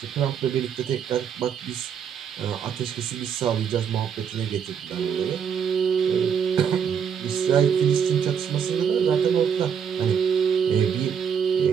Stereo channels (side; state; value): left; quieter; 7.5 dB